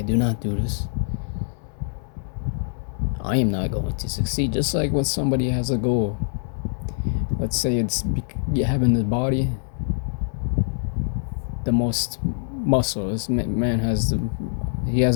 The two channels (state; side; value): silent; right; 62 dB below the other